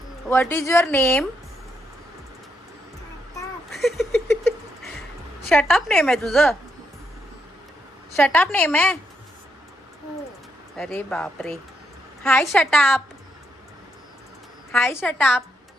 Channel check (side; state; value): both; normal; correlation 0.79